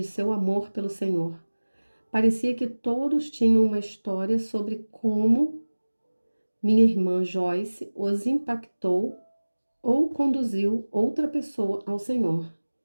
seu amor pelo Senhor. Parecia que todos tinham uma história sobre como minha irmã Joyce os impactou ou conduziu outra pessoa ao Senhor.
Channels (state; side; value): inverted; both; correlation -1.00